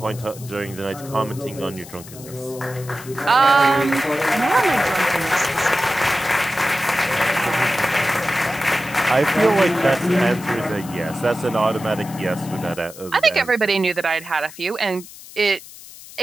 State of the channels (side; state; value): left; noise; hiss, 17 dB below the sound